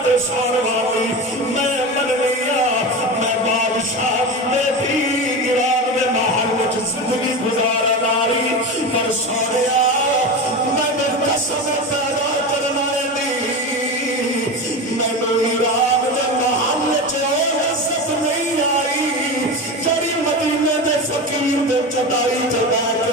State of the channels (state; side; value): normal; both; correlation 0.24